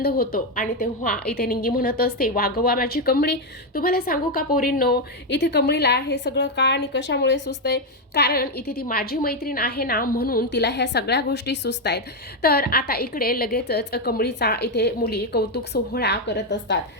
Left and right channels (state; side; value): normal; both; correlation 0.05